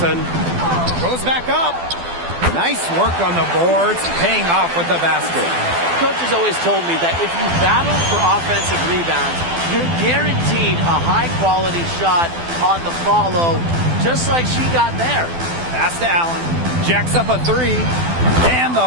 Goes back up. Nice work on the boards, paying off with the basket. Coach has always told me that if you battle for offensive rebounds, you're guaranteed a high-quality shot on the follow, just like she got there. Pass to Allen. Jacks up a 3. And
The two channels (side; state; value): left; late; 12 ms